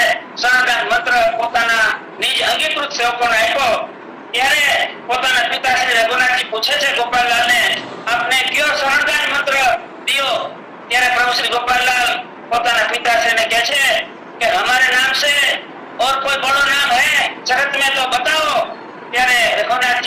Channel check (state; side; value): identical; both; correlation 1.00